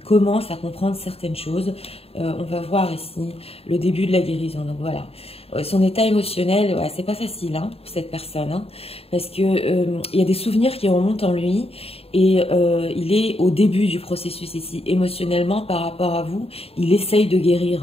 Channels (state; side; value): late; right; 0.28 ms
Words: à comprendre certaines choses. On va voir ici le début de la guérison. Donc voilà, son état émotionnel, ouais, c'est pas facile, hein, pour cette personne, hein, parce que il y a des souvenirs qui remontent en lui et il est au début du processus ici, émotionnellement par rapport à vous. Il essaye de